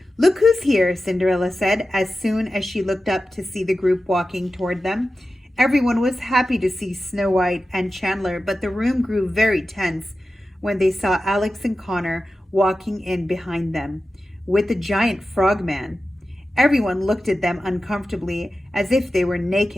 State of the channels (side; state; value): both; normal; correlation 0.93